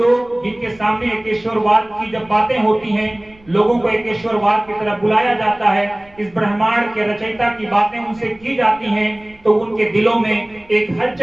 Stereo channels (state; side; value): noise; right; rumble, 28 dB below the sound